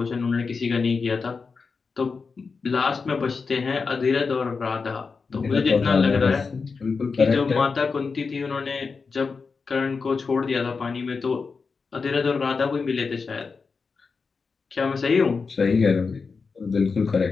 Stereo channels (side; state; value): right; quieter; 4.8 dB